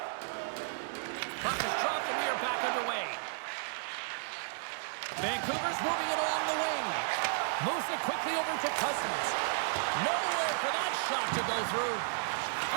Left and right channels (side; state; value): left; silent; 55 dB below the other